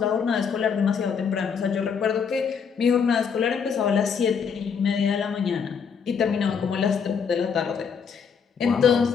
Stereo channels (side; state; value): right; quieter; 6.5 dB